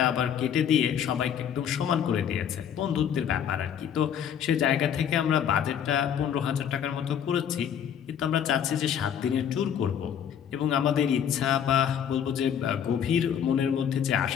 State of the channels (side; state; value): right; quieter; 8.7 dB